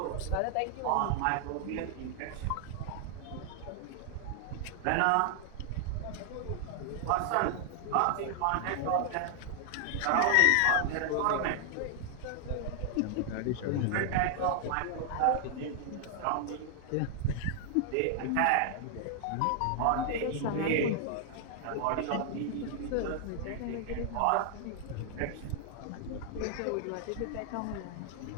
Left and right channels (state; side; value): different; both; correlation 0.00